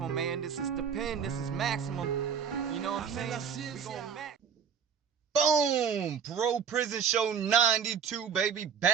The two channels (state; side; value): quieter; left; 7.1 dB